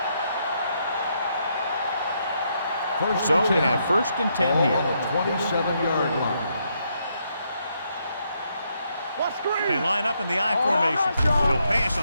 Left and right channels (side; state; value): both; inverted; correlation -0.77